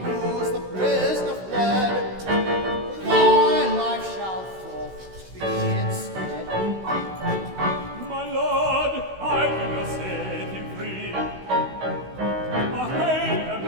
news, the prisoner fled. Thy life shall forth be instead. My lord, I did not set him free. I hate a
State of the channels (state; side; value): late; left; 16 ms